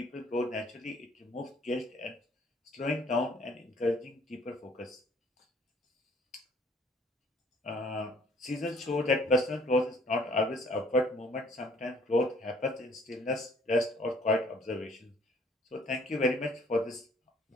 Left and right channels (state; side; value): normal; both; correlation 0.59